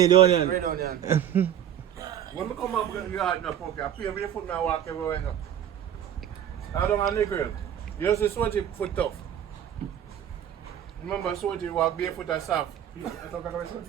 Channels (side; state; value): left; quieter; 10.0 dB